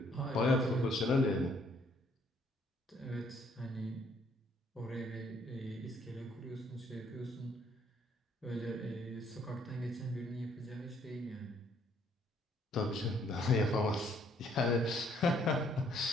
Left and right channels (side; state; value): both; normal; correlation 0.66